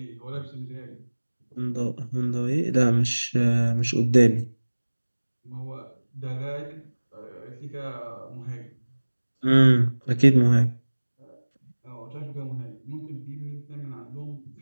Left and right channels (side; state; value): both; inverted; correlation -1.00